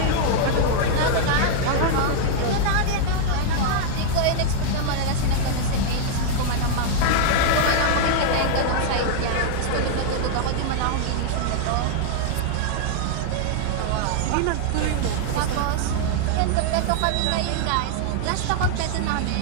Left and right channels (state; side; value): different; both; correlation -0.01